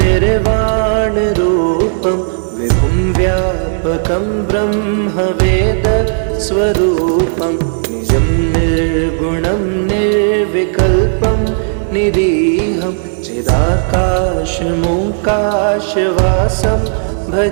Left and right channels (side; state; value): left; silent; digital silence